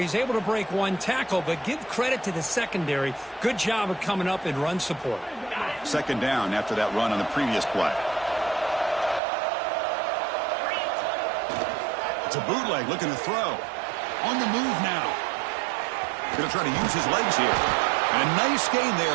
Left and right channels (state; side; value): drops out; left; at 9.2 s